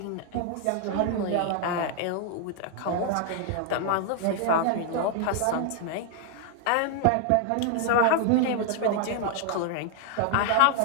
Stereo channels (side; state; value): both; different; correlation 0.00